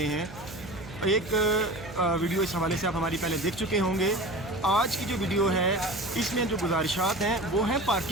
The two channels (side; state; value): right; noise; hum, 15 dB below the sound